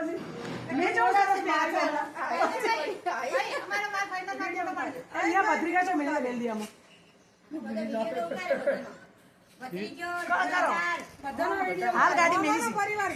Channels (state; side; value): identical; both; correlation 1.00